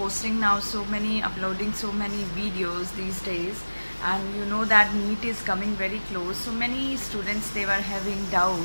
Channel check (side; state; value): both; inverted; correlation -1.00